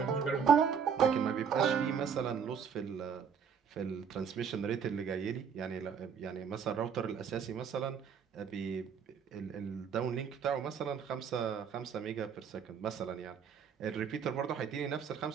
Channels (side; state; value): left; quieter; 7.0 dB